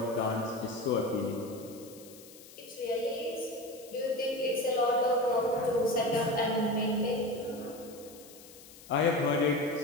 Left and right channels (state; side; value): noise; left; hiss, 20 dB below the sound